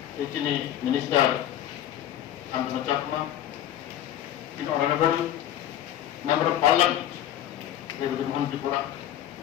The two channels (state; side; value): quieter; right; 11.7 dB